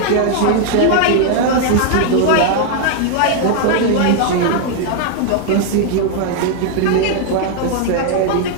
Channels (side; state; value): both; different; correlation 0.00